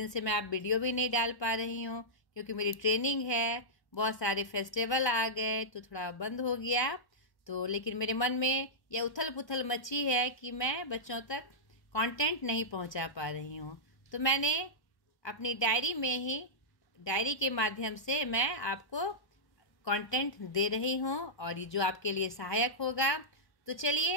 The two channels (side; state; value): right; late; 1.2 ms